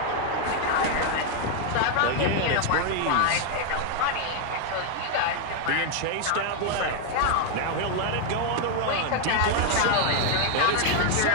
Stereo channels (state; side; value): different; both; correlation 0.01